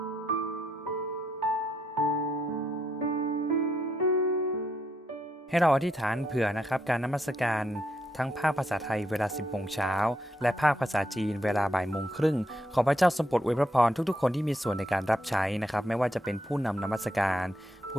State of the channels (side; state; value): both; normal; correlation 0.77